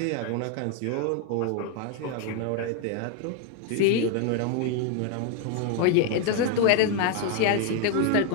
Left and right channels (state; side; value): different; both; correlation 0.01